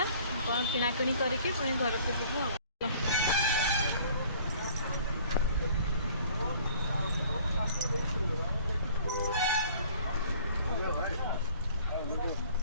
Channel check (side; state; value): both; inverted; correlation -0.53